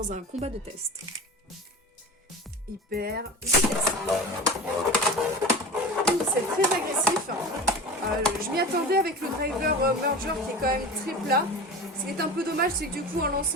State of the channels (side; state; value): both; normal; correlation 0.32